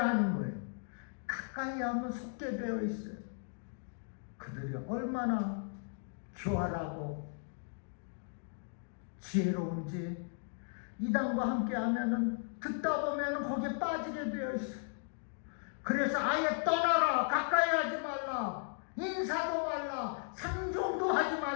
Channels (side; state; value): right; silent; 54 dB below the other